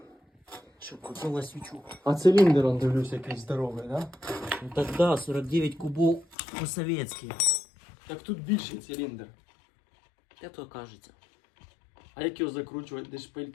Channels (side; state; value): right; drops out; at 6.4 s